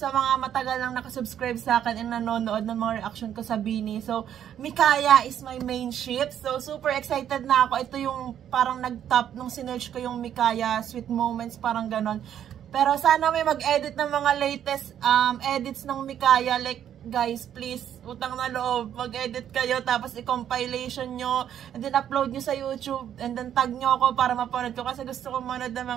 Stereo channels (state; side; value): quieter; left; 10.0 dB